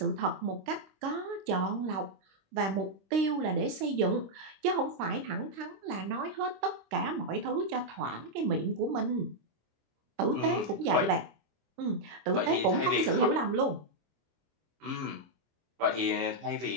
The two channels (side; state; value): left; late; 26 ms